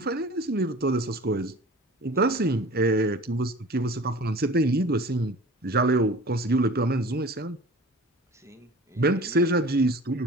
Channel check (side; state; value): both; normal; correlation 0.41